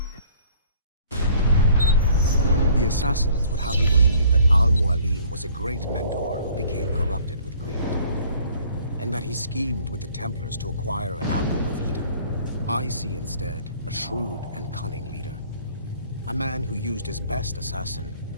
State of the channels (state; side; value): inverted; both; correlation -0.55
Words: The assassins would have you believe that Al-Mualim was a great mentor who became corrupted with greed, and that he schemed with the Templars to acquire an apple of Eden. I see instead a shrewd and cunning leader. A man who used his best assassin,